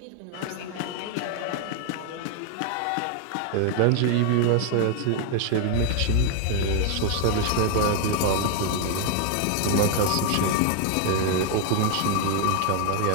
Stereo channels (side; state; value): both; different; correlation 0.00